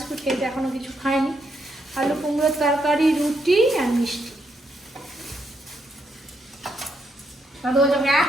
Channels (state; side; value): normal; both; correlation 0.77